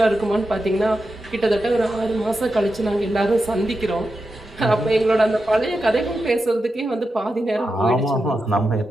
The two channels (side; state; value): both; normal; correlation 0.89